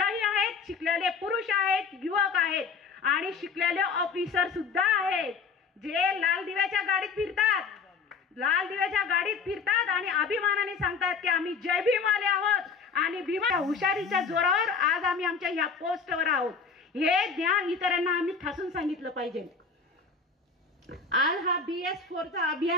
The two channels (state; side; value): quieter; right; 5.2 dB